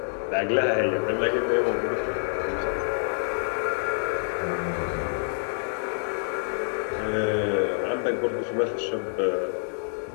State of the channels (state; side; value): silent; right; digital silence